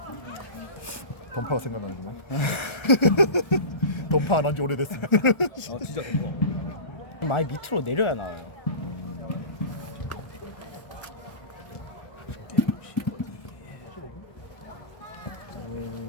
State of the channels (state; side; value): late; right; 1.3 ms